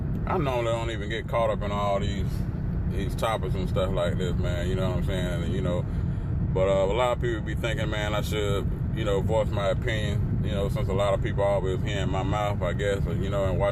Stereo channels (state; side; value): identical; both; correlation 1.00